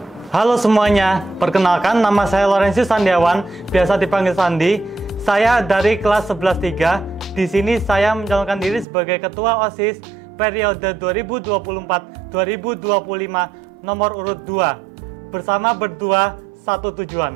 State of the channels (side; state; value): left; drops out; at 8.8 s